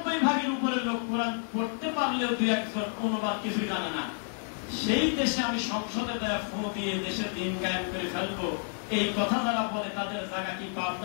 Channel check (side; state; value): right; silent; 58 dB below the other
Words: উপরে লোক কোরআন পড়তে পারলেও 2-1 অনুবাদ কিছুই জানে না, সেই দেশে আমি সংসদে দেয়া ফোন দিয়ে দেশের দিন কায়েম করে ফেলবো, এই কথা যারা বলে তাদের জায়গা কি